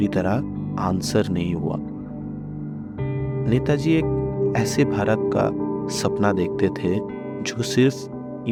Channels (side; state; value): both; identical; correlation 1.00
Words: तरह आंसर नहीं हुआ। नेताजी एक ऐसे भारत का सपना देखते थे जो सिर्फ